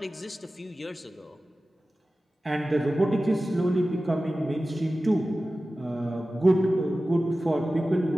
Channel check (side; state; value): both; normal; correlation 0.95